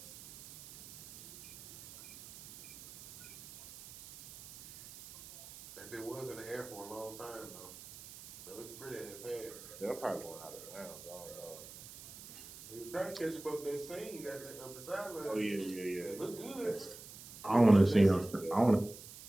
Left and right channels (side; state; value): right; noise; hiss, 16 dB below the sound